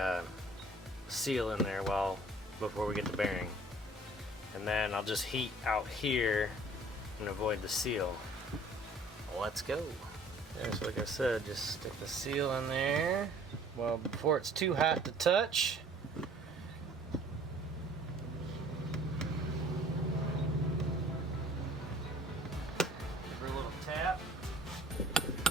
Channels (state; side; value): normal; both; correlation 0.53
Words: seal in there before we get the bearing. And then I'll just heat out here and avoid the seal. Let's go. Yeah, so like I said, just stick the seal in there before it's too hot to touch. Tap.